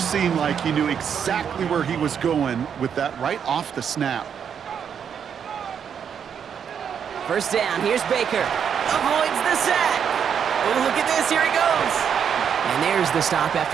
like he knew exactly where he was going with that right off the snap. First down, here's Baker. Avoids the sack. Oh, look at this, here he goes. And there's the stop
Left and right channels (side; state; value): left; quieter; 7.7 dB